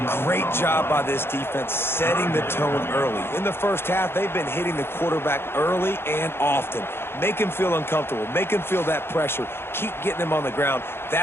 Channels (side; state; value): right; late; 0.11 ms